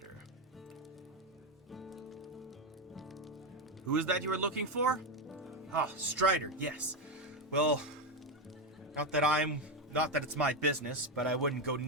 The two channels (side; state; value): both; normal; correlation 0.09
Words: Who is that you were looking for? Ah, Strider, yes. Well, not that it's my business, but I wouldn't go